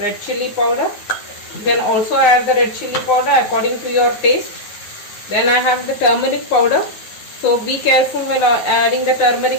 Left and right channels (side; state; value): right; late; 9.3 ms